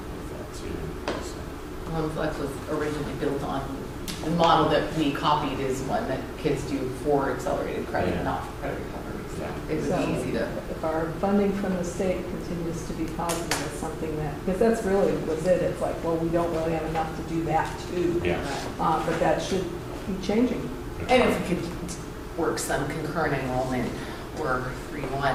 with that too. So. Flex was originally built on, the model that we copied is one that kids do for accelerated credit, Yeah. not for credit recovery. So Yeah. it was So easy to. if our funding from the state continues to be positive, it's something that, because that's really was it. It's like, well, we don't really have enough to do that too. Yeah. But that should be changing. And if we could work some concurrent enrollment or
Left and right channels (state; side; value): identical; both; correlation 1.00